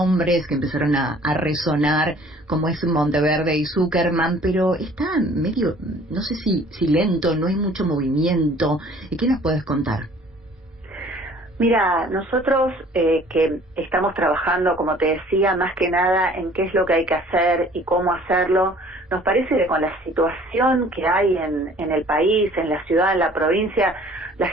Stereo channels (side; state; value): both; normal; correlation 0.53